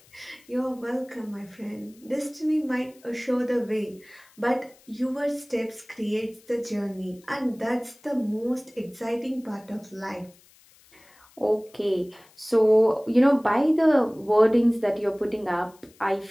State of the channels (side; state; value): left; noise; hiss, 28 dB below the sound